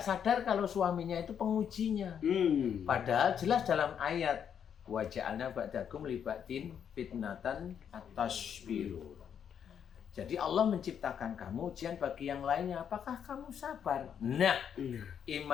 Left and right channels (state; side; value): quieter; right; 8.2 dB